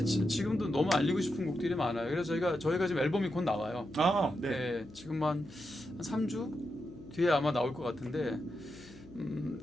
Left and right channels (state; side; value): noise; left; hum, 21 dB below the sound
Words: 지금도 너무 알리고 싶은 곡들이 많아요. 그래서 저희가 지금 앨범이 곧 나와요. 네. 네, 지금 한 3주 뒤에 아마 나올 것 같은데